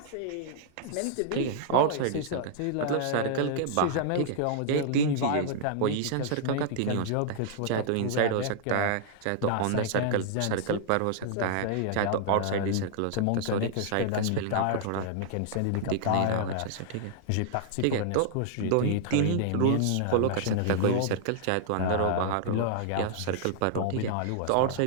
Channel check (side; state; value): both; different; correlation -0.01